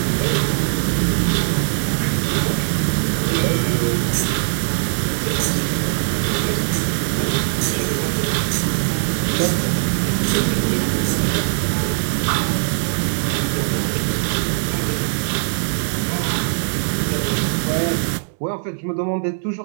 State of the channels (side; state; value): left; silent; digital silence